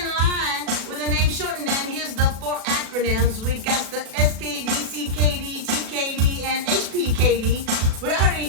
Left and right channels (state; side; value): late; left; 37 ms